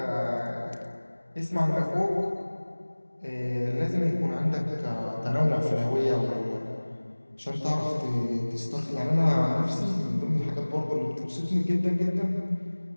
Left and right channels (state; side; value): inverted; both; correlation -1.00